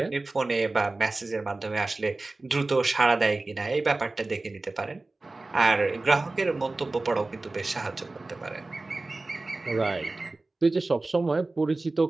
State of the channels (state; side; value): quieter; left; 3.2 dB